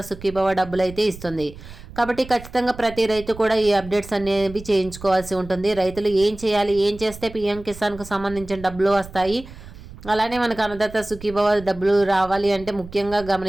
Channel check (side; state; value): right; noise; rumble, 16 dB below the sound